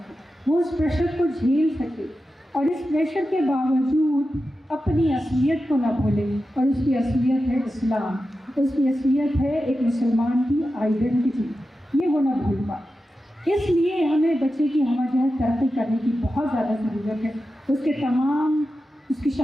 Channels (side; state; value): both; normal; correlation 0.91